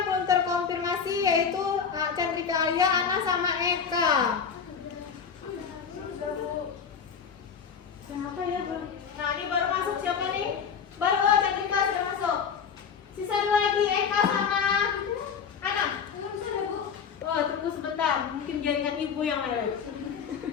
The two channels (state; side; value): quieter; right; 6.7 dB